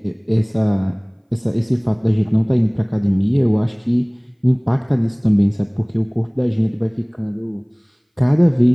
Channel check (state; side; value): identical; both; correlation 1.00